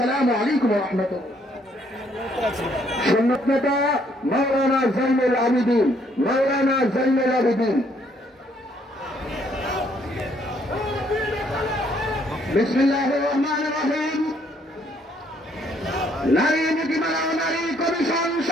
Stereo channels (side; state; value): both; normal; correlation 0.68